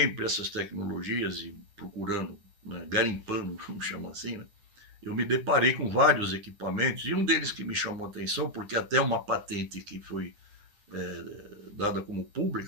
essas tecnologias e procurando, né, garimpando, vamos chamar assim, né, eu me deparei com vários equipamentos, e um deles que me chamou a atenção, porque até uma patente que foi dada como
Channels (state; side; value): late; left; 9.9 ms